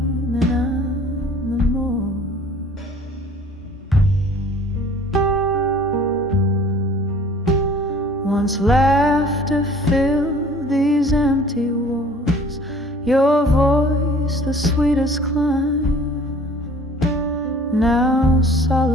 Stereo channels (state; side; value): normal; both; correlation 0.51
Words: and I'm the more. Once laughter filled these empty walls, your voice the sweetest climb. Now